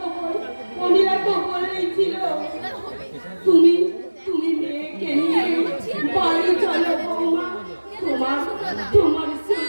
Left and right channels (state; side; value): inverted; both; correlation -1.00